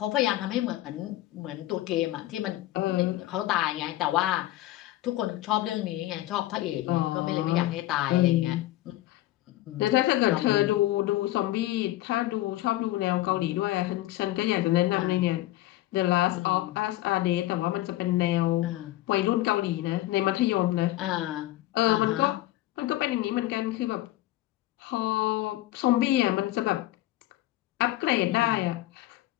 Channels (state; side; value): quieter; right; 16.0 dB